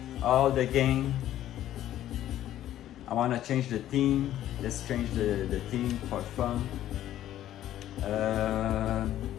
all the game. I want to change the theme. Let's change the theme for fun.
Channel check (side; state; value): right; quieter; 12.5 dB